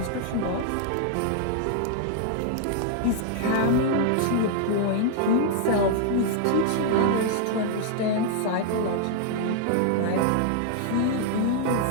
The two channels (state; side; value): different; both; correlation -0.01